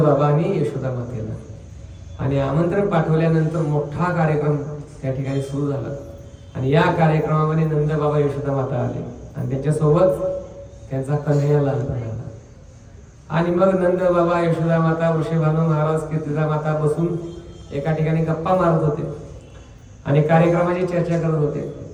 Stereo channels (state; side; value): identical; both; correlation 1.00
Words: आणि यशोदा मातेला. आणि आमंत्रण पाठवल्यानंतर मोठा कार्यक्रम त्या ठिकाणी सुरू झाला. आणि या कार्यक्रमामध्ये नंद बाबा यशोदा माता आले आणि त्याच्यासोबत त्यांचा कन्हैया लहानपण आला. आणि मग नंद बाबा यशोदा माता वृषभानु महाराज कीर्तिदा माता बसून एका ठिकाणी गप्पा मारत होते आणि कार्यक्रमाची चर्चा करत होते.